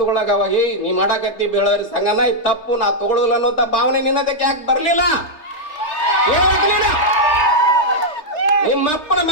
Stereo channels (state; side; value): late; right; 3.3 ms